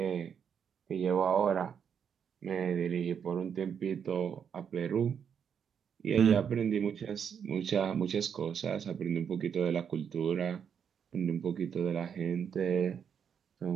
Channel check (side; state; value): left; quieter; 7.6 dB